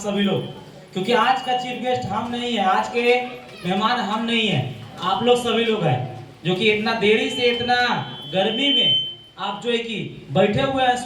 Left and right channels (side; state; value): both; identical; correlation 1.00